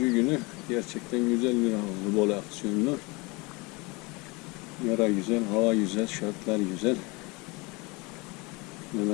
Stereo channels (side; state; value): right; quieter; 26.2 dB